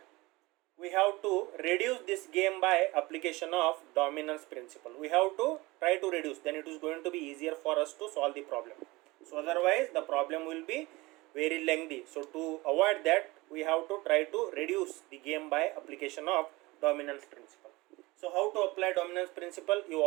We have to reduce this game by application of dominance principle. We have to try to reduce, then it is going to be easier for us to solve the problem. So otherwise the problem will be very lengthy. So to avoid that, we have to try to reduce the game by application of dominance principle. So how to apply dominance principle? You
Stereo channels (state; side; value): quieter; left; 22.0 dB